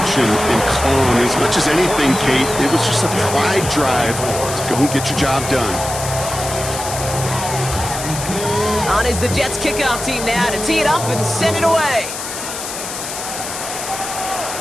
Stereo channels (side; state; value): left; noise; hiss, 7 dB below the sound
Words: and clawing. As much as anything, Kate, it was just a pride drive to go and get your job done. On is the Jets kickoff team now to tee it up and send it away.